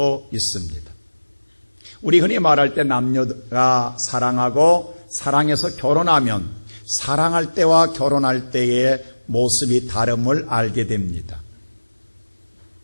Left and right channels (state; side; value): inverted; both; correlation -1.00